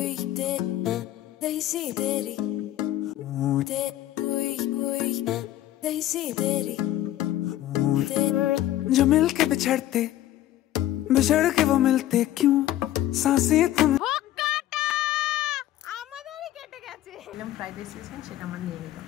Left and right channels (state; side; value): quieter; right; 13.7 dB